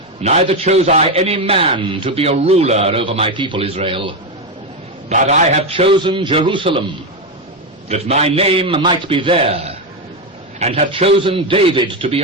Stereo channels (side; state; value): both; normal; correlation 0.10